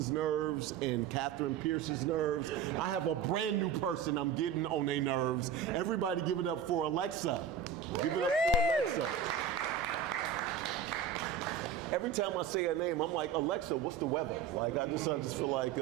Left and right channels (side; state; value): left; quieter; 7.9 dB